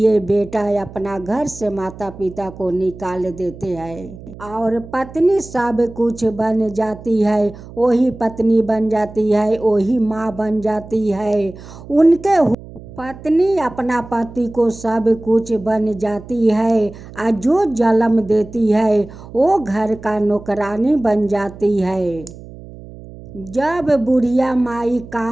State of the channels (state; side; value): noise; right; hum, 16 dB below the sound